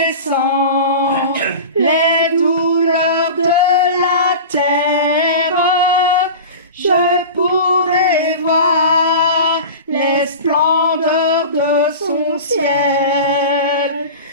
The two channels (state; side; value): inverted; both; correlation -0.32